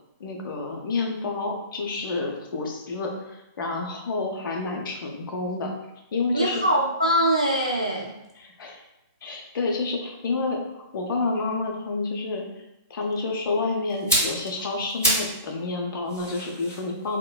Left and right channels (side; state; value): both; inverted; correlation -0.44